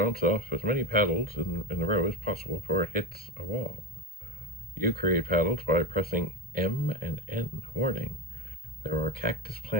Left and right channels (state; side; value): normal; both; correlation 0.20